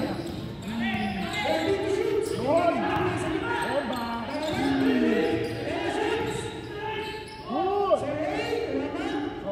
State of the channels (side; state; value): both; identical; correlation 1.00